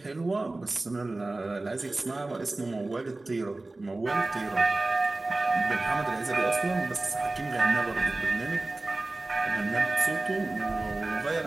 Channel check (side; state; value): left; quieter; 3.0 dB